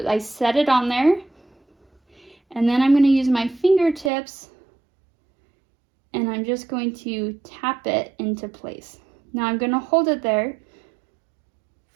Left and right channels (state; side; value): drops out; left; at 4.1 s